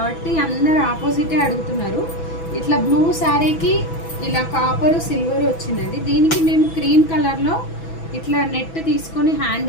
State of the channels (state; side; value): late; right; 6.1 ms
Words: అందరు ఆపోజిటే అడుగుతున్నారు. ఇట్లా బ్లూ శారీకి ఇలా కాపరు సిల్వర్ వచ్చిందండి. దీనికి మేము క్రీమ్ కలర్లో ఇట్లా నెట్ తీసుకొని